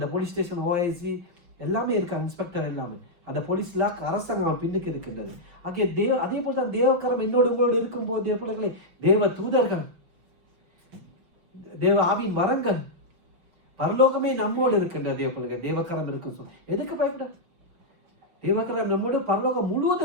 போலீஸ் ஸ்டேஷன் ஓஐசி எல்லாமே இருக்கு, இன்ஸ்பெக்டர் எல்லாமே, அந்த போலீஸ்ல அரசாங்கம் அவன் பின்னுக்கு இருக்கின்றது. ஆகிய அதே போல தான் தேவக்கரம் என்னோடு உங்களோடு இருக்கும் போது தேவ பிள்ளைகளே, தேவ தூதர்கள், தேவ ஆவின் வரங்கள், பரலோகமே நம்மோடு இருக்கின்ற தேவ பிள்ளைகள். தேவக்கரம் இருக்கும் சொல், எதுக்கு பயப்பட? தேவக்கரம் நம்மோடு, பரலோகம்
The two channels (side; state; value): left; late; 5.8 ms